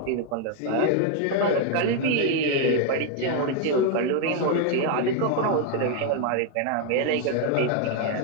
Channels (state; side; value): different; both; correlation 0.00